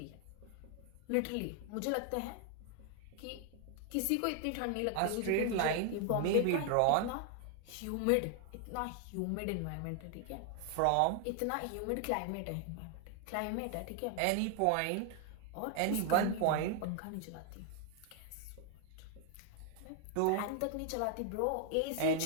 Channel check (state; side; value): different; both; correlation 0.00